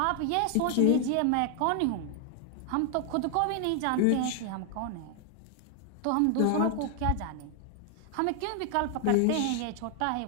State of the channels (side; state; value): both; different; correlation 0.00